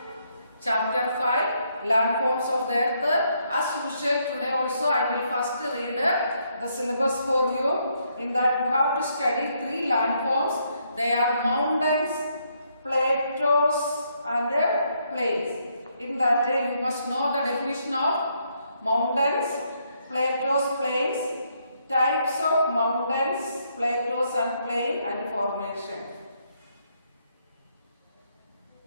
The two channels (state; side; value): inverted; both; correlation -0.74